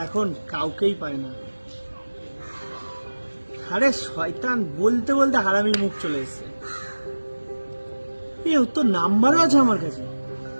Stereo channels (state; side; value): inverted; both; correlation -1.00